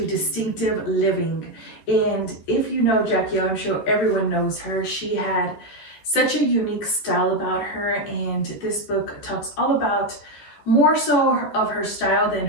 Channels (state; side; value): late; right; 14 ms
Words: distinctive living. And if you know Jackie O, I'm sure everyone knows her. She had such a unique style about her, and this book talks all about more so of her style than